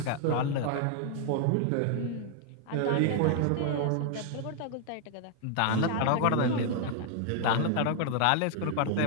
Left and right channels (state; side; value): different; both; correlation 0.00